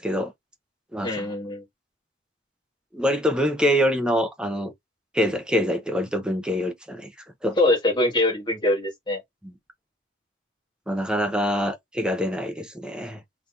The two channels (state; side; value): normal; both; correlation 0.58